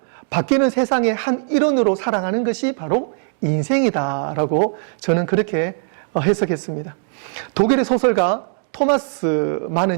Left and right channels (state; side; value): silent; left; digital silence